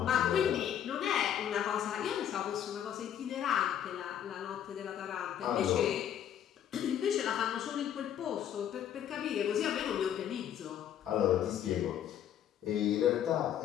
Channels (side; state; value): right; quieter; 9.9 dB